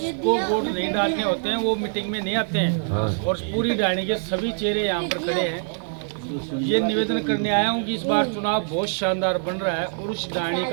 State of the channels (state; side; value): silent; left; digital silence